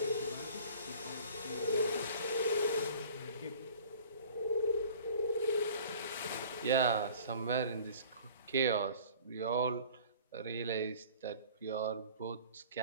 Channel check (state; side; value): inverted; both; correlation -0.47